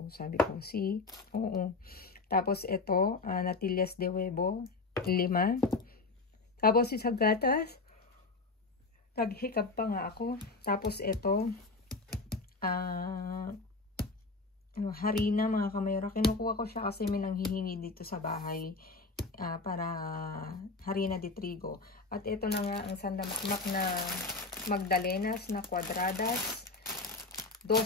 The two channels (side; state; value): right; quieter; 3.8 dB